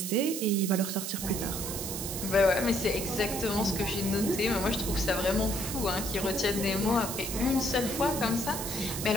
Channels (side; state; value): right; noise; hiss, 5 dB below the sound